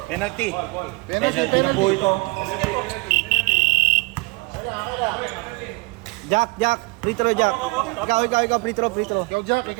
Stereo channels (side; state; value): left; quieter; 26.4 dB